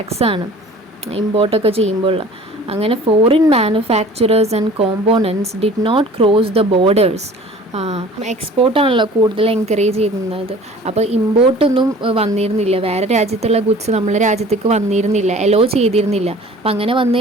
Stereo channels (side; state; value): both; normal; correlation 0.47